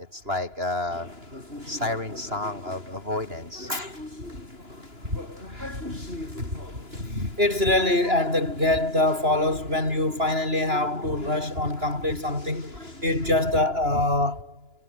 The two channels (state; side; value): late; left; 2.9 ms